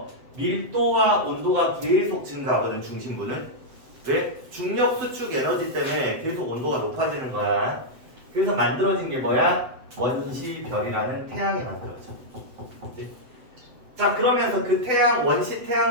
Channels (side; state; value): left; late; 7.8 ms